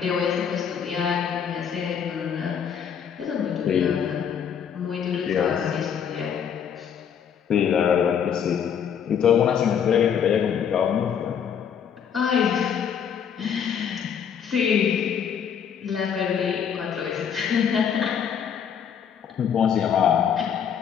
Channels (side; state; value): right; quieter; 7.9 dB